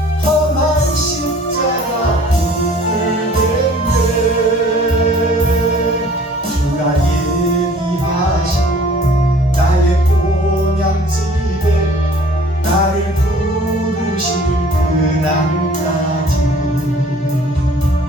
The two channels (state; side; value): normal; both; correlation 0.52